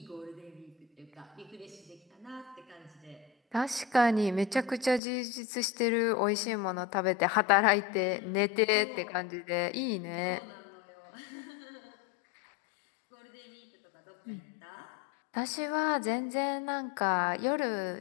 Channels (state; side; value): drops out; right; at 5.0 s